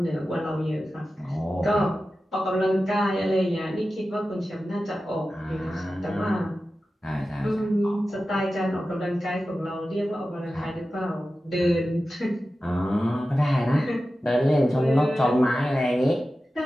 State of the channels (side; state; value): both; normal; correlation 0.94